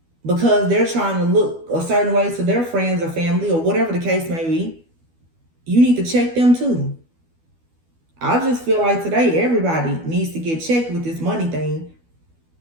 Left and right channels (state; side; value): late; left; 12 ms